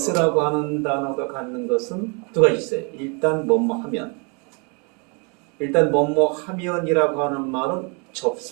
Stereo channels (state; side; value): quieter; left; 34.4 dB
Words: 하는 단어가 갖는 것은 두 가지 있어요. 일단 뭐뭐 하면 일단 뭐뭐 하면이라고 하는 말은